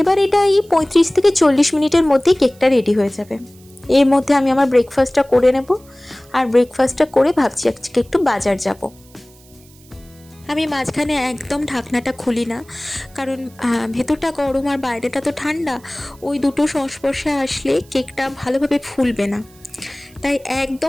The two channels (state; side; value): noise; right; hiss, 27 dB below the sound